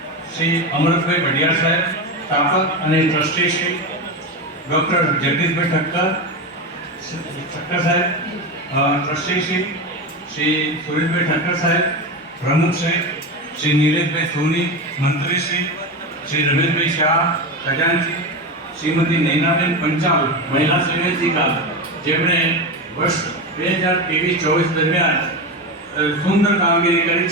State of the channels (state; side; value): normal; both; correlation 0.19